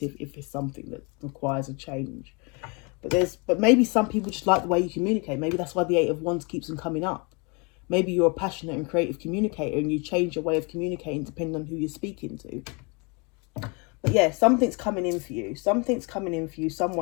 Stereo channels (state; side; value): quieter; right; 31.2 dB